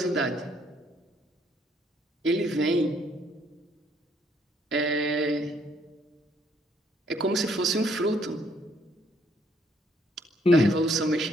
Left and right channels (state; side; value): normal; both; correlation 0.68